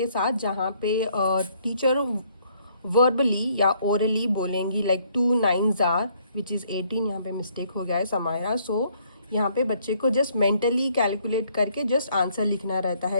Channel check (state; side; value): inverted; both; correlation -0.67